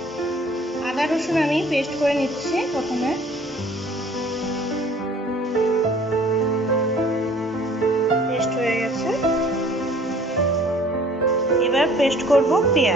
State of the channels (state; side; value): normal; both; correlation 0.53